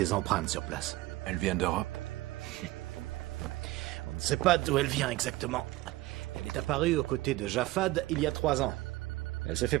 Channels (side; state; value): left; quieter; 18.5 dB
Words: empreintes sur place. Elle vient d'Europe? On ne sait pas d'où elle vient exactement. Elle est apparue aux côtés de Japhad il y a 3 ans. Elle s'est fait